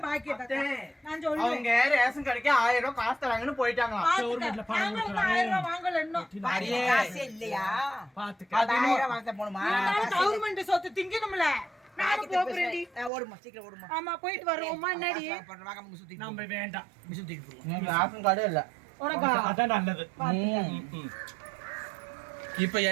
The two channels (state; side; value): drops out; left; at 13.1 s